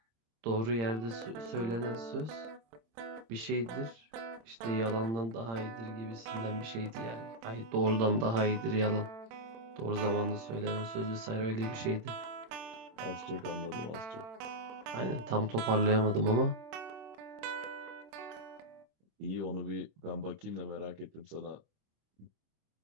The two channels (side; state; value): left; late; 26 ms